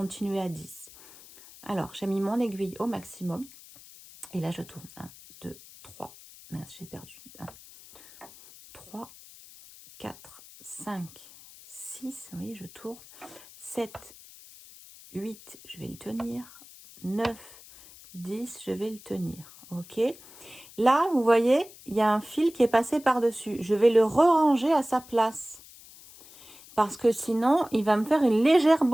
à 10. Alors, j'ai mis mon aiguille au maximum. Et là, je tourne. 1, 2, 3. Mince, j'ai perdu. 1, 3, 4, 5, 6. Vous voyez, je tourne. 7, 8, je vais le tenir. 9, 10, je vais le tenir. Ok. Là, vous voyez, il y a un fil qui est passé par-dessus. Je vais le re-ranger à sa place. Parce que sinon, il va me faire une légère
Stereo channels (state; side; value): noise; left; hiss, 20 dB below the sound